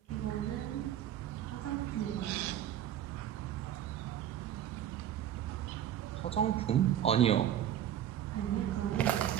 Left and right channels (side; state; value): left; quieter; 10.8 dB